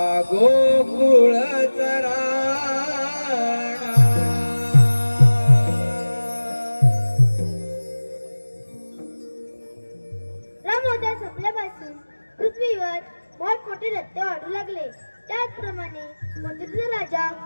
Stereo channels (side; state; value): both; inverted; correlation -1.00